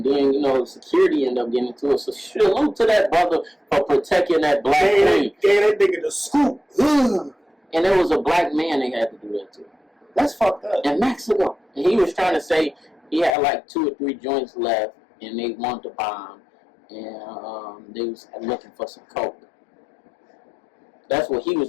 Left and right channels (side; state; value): right; drops out; at 13.3 s